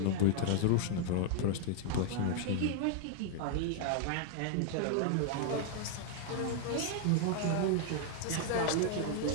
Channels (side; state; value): both; different; correlation 0.00